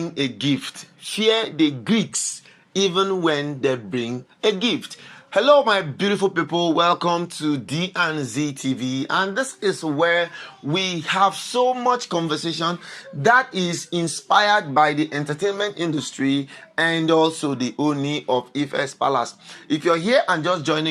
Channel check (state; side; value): identical; both; correlation 1.00